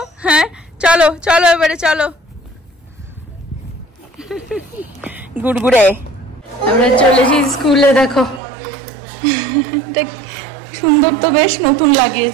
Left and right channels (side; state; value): left; drops out; at 8.4 s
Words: হ্যাঁ চলো চলো এবারে চলো। গুড়গুড়ে আমরা চলেছি স্কুলে। দেখো সুন্দর তো, বেশ নতুন